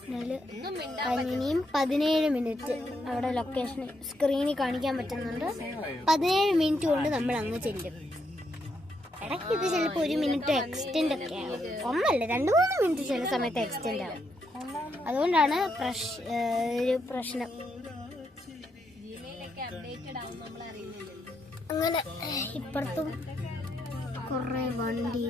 കഴിഞ്ഞിനിയും 17 മിനിറ്റ് അവിടെ ലൊക്കേഷൻ സ്ക്രീനിൽ കാണിക്കാൻ പറ്റുന്നുണ്ട്. 17 മിനിറ്റ് കൊണ്ട് നമ്മൾ അങ്ങ് ചെല്ലും. ഇടയ്ക്ക് ഇത് ചിലപ്പോൾ 1 മിനിറ്റ് എക്സ്റ്റെൻഡ് ഒക്കെ ആവും. ഒന്നല്ല 2-3 മിനിറ്റ് ചില സമയത്ത് എക്സ്റ്റെൻഡ് ആവും. അതുകൊണ്ടാണ് ഒരു പ്രശ്നം. അങ്ങനെ ഇപ്പുറത്തും കുറേ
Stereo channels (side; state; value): both; normal; correlation 0.79